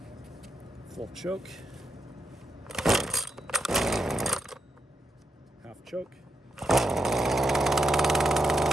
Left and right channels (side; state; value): both; normal; correlation 0.80